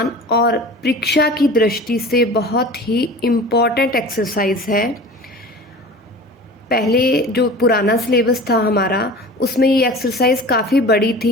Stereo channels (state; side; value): normal; both; correlation 0.38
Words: और परीक्षा की दृष्टि से बहुत ही इम्पॉर्टेंट एक्सरसाइज है। पहले जो पुराना सिलेबस था हमारा, उसमें ये एक्सरसाइज काफ़ी बड़ी थी,